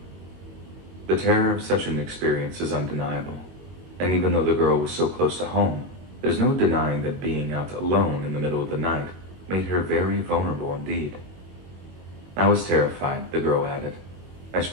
The terror of such an experience is undeniable, and even though the girl was so close to home, there's no denying that being out alone in the middle of the night made her very vulnerable indeed. I was terrified, the girl added. I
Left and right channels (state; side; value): late; left; 22 ms